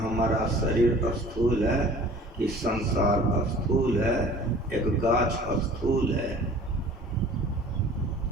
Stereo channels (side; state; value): both; normal; correlation 0.47